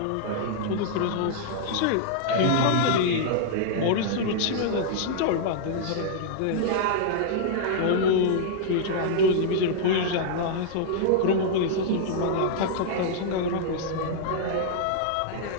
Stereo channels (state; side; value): different; both; correlation -0.01